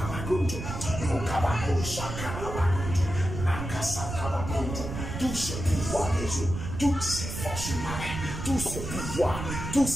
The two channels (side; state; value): right; noise; rumble, 6 dB below the sound